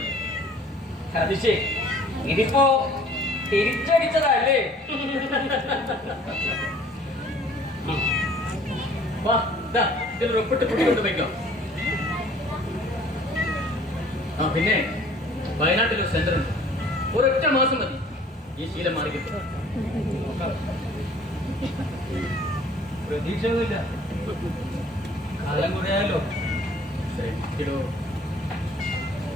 അത് ശരി, ഇതിപ്പോ തിരിച്ചടിച്ചതല്ലേ? വാ, ഇതിൽ ഒപ്പിട്ട് കുട്ടിക്കൊണ്ട് വയ്ക്കാം. ആ പിന്നെ വയനാട്ടിലൊരു സെന്റർ ഉണ്ട്, ഒരൊറ്റ മാസം മതി ഈ ശീലം മാറി കിട്ടും. പ്രതീക്ഷയൊന്നുമില്ല, കാലം കുറയാലോ. ശരി.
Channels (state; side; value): normal; both; correlation 0.53